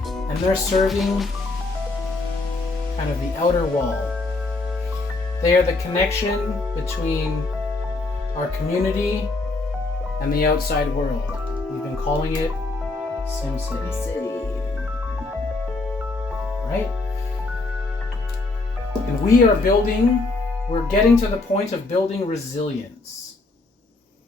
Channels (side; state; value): right; quieter; 3.3 dB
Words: and they're serving kind of the outer wall. They are the connection between our community and the outside world. We've been calling it SimCity. Right? And we're getting to the point of building resilience.